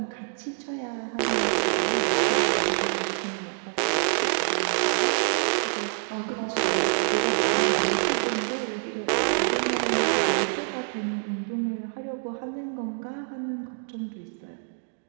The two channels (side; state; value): left; silent; digital silence